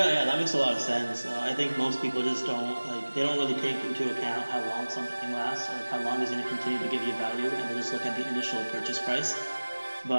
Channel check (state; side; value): inverted; both; correlation -1.00